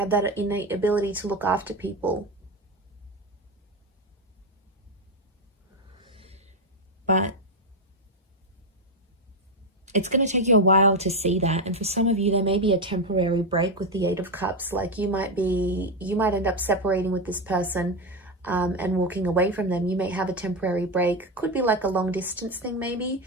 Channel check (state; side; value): normal; both; correlation 0.10